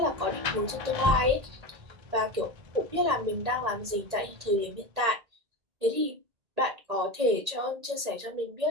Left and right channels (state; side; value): late; left; 1.8 ms